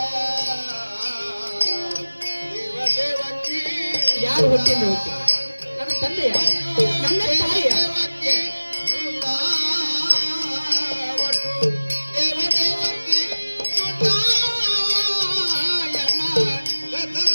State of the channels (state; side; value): inverted; both; correlation -1.00